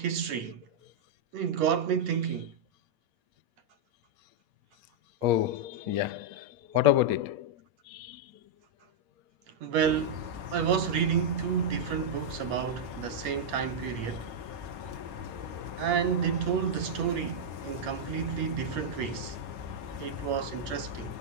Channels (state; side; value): late; left; 8.6 ms